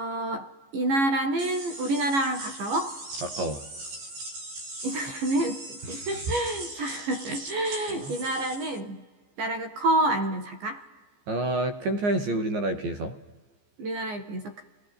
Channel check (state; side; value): late; left; 15 ms